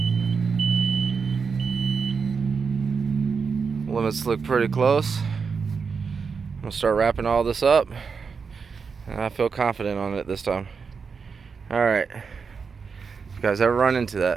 Limits look pretty close. I'm gonna start wrapping all this up, and I feel confident on it this time. Alright, if you guys ever run into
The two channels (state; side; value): quieter; left; 5.5 dB